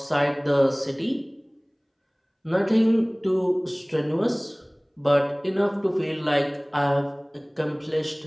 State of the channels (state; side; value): identical; both; correlation 1.00